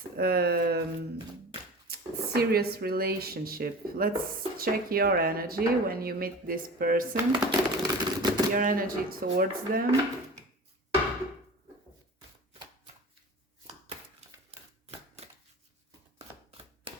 serious relationship? Let's check your energy when you meet this person, your energy towards them.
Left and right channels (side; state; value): both; normal; correlation 0.36